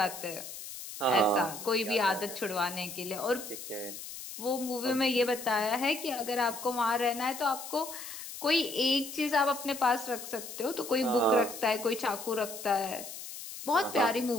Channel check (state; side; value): noise; left; hiss, 10 dB below the sound